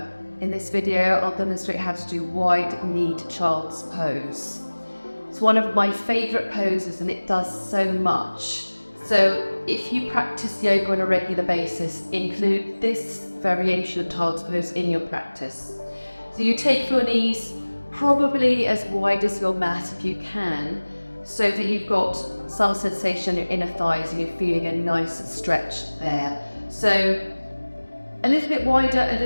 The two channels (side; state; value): both; inverted; correlation -1.00